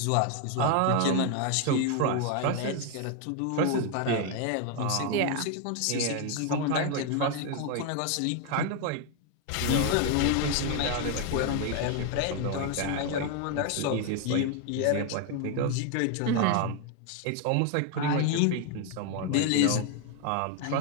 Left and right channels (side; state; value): both; different; correlation 0.01